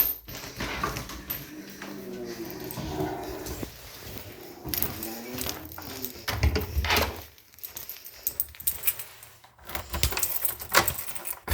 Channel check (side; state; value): both; identical; correlation 1.00